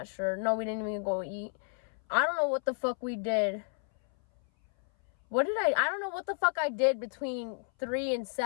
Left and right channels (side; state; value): right; silent; 57 dB below the other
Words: sure. No, we didn't even go eat. I don't know what the fuck we did. I don't know what the fuck I did between 3 and